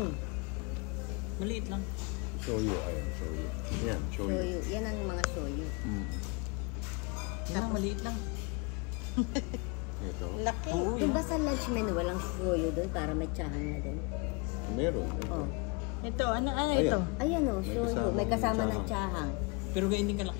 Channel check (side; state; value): right; quieter; 30.6 dB